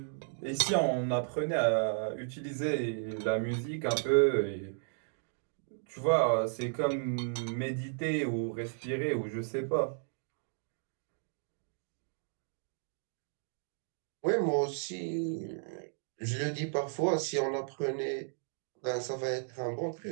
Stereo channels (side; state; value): left; silent; digital silence